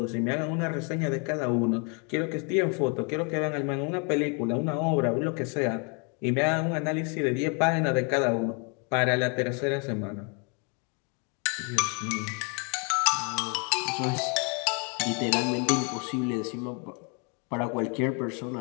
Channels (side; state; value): right; quieter; 36.2 dB